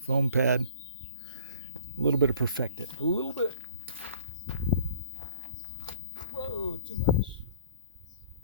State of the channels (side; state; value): both; inverted; correlation -0.50